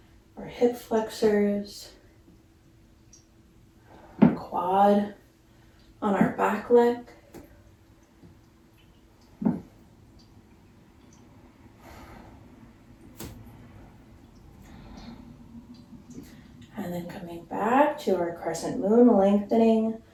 our hip flexors, our quad on our back leg. And then coming back to our crescent moon, lengthening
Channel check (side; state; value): both; identical; correlation 1.00